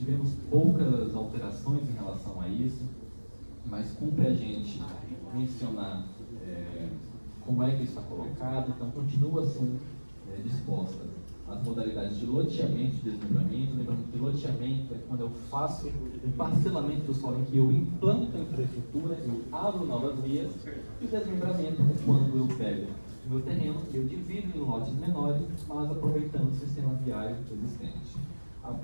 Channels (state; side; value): inverted; both; correlation -1.00